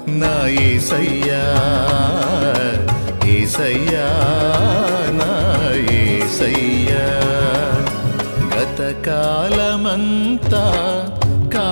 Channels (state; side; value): inverted; both; correlation -1.00